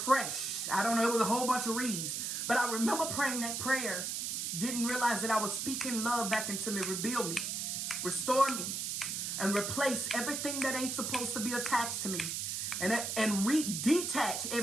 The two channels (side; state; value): right; noise; hiss, 2 dB below the sound